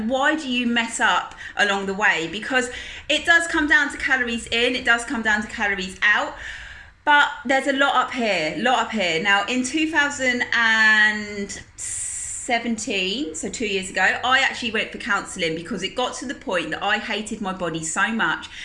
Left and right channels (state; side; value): identical; both; correlation 1.00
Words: why do you mess up along the way? Because it does come down to calories in, it does come down to calories out. But there's a lot up here, Now, in 2017, so 2 years ago, I actually went for counselling because it got to the point that I hated my body so much